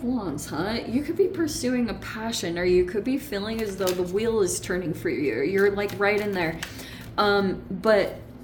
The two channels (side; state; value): both; identical; correlation 1.00